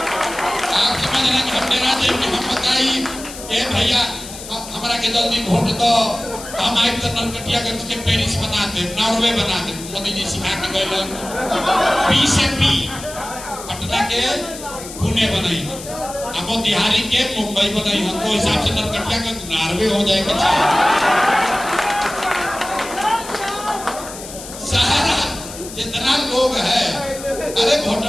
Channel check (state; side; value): noise; left; hiss, 13 dB below the sound